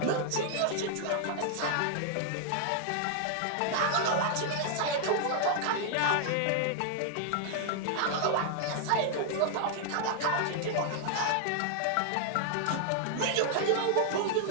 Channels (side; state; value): both; different; correlation 0.00